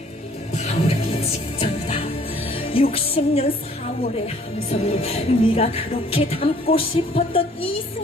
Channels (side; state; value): both; normal; correlation 0.58